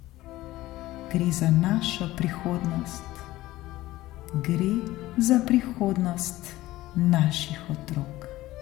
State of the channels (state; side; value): quieter; right; 16.9 dB